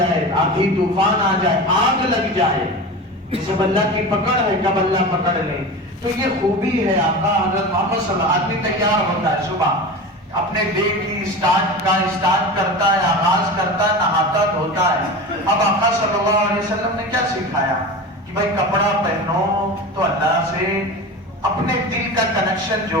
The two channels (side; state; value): both; normal; correlation 0.29